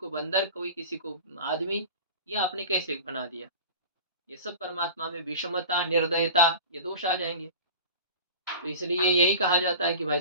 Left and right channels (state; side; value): inverted; both; correlation -0.36